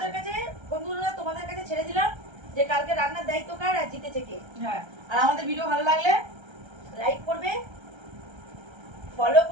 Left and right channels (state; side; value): late; left; 1.3 ms